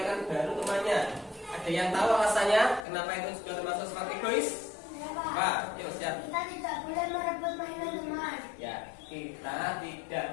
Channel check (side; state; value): right; drops out; at 2.9 s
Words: baru temannya. Ada yang tahu alasannya? Kenapa itu juga termasuk sifat egois? Pak, yuk siap. Kita tidak boleh merebut mainan teman. Ya, kita